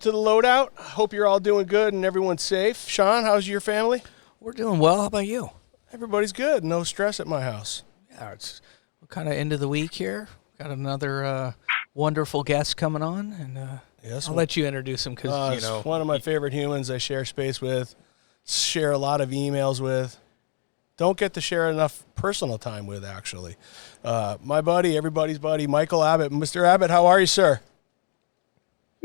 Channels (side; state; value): right; silent; digital silence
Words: the Loadout. Hope you're all doing good and everyone's safe. Sean, how's your family? We're doing well. How about you? Everybody's good. No stress at my house. Yeah, it's kind of end of the week here. Got another wonderful guest coming on, and Yes, I'll let you introduce him because it's one of my favorite humans I share space with, share a lot of emails with. Don't get to share enough personal time with, actually. My buddy, everybody's buddy, Michael Abbott. Mr. Abbott, how are you, sir?